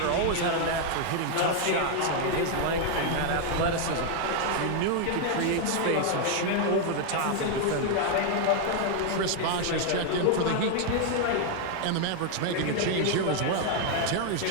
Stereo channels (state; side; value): different; both; correlation 0.01